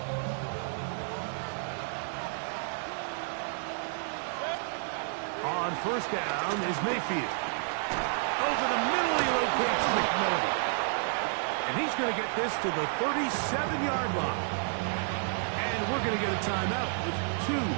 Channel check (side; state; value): left; silent; 57 dB below the other